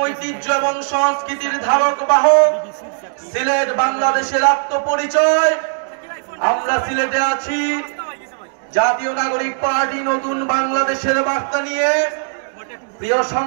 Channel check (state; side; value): silent; left; digital silence